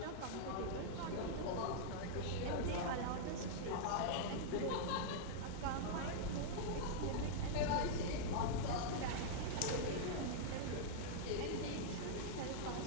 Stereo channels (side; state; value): both; different; correlation -0.02